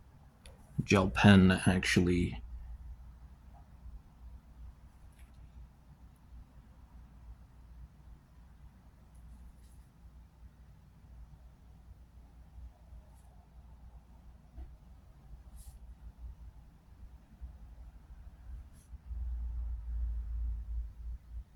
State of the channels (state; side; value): identical; both; correlation 1.00